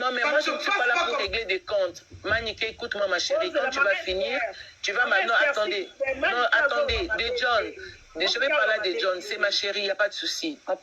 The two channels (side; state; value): both; identical; correlation 1.00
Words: mais moi je ne suis pas là pour régler des comptes Maniqué écoute-moi ma chérie quand tu vas finir tu vas maintenant attendez des John je vais parler de John, c'est ma chérie, il n'y a pas de souci. On